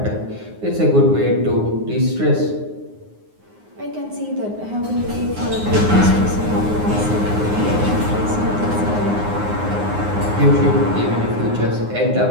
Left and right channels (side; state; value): left; late; 9.6 ms